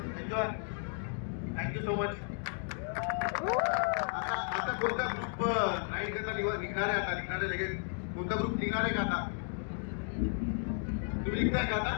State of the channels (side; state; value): right; silent; 55 dB below the other